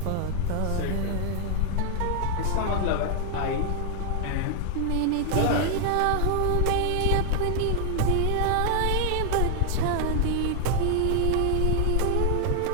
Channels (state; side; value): different; both; correlation 0.00